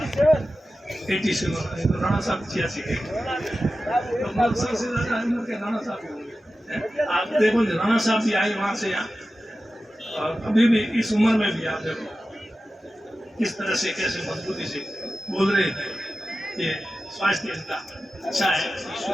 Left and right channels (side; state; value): both; normal; correlation 0.94